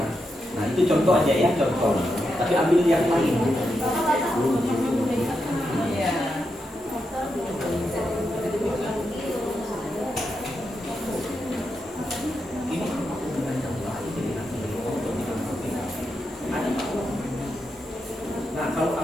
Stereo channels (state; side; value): normal; both; correlation 0.85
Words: Nah, itu contoh aja ya, contoh. Tapi ambil yang lain. Nah, kalau